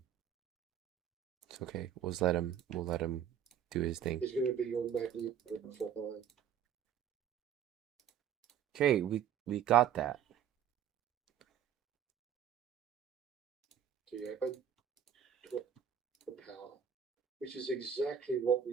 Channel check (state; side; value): quieter; left; 8.8 dB